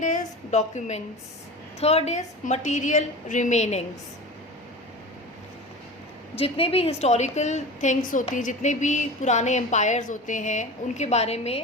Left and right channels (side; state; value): both; normal; correlation 0.31